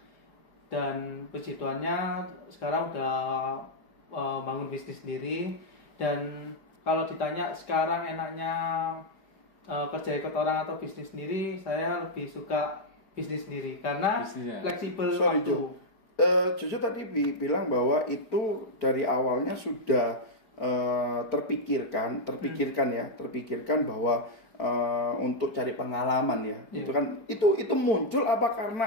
Dan puji Tuhannya sekarang udah bangun bisnis sendiri. Dan kalau ditanya sekarang enaknya kerja ikut orang atau bisnis sendiri, saya lebih suka bisnis sendiri karena Bisnisnya. fleksibel Sorry, waktu. Jo. Jojo tadi bilang bahwa itu dari awalnya sudah terpikirkan bahwa untuk cari pengalaman ya. Iya. Itu kan itu muncul apa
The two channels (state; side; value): late; right; 4.9 ms